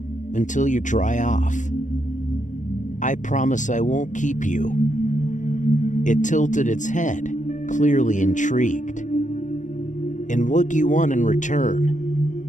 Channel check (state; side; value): late; right; 0.36 ms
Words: until you dry off. I promise I won't keep you. It tilted its head, clearly intrigued. And what do you want in